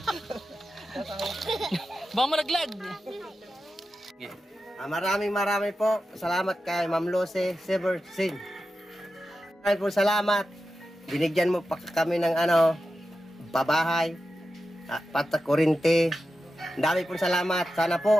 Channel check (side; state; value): both; normal; correlation 0.91